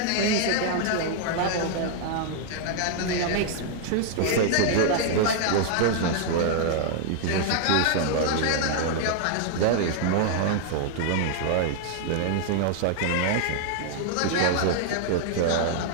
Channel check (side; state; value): both; different; correlation -0.01